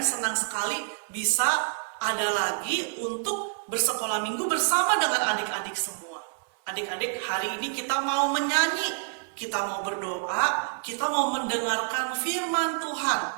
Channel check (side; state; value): left; silent; 60 dB below the other